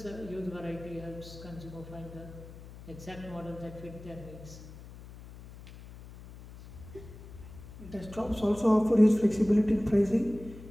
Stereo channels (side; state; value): left; noise; hum, 16 dB below the sound